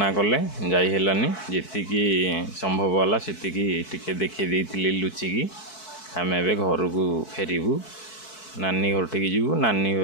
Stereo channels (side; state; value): right; late; 4.6 ms